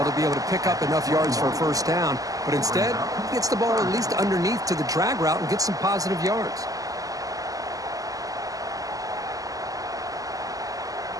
to be able to pick up enough yards for a first down. But instead, he gets the ball at least underneath to the drag route and gets some positive yards.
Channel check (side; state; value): left; late; 0.17 ms